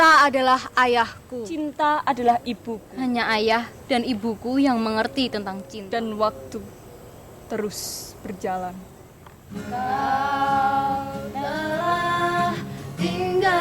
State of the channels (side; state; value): both; identical; correlation 1.00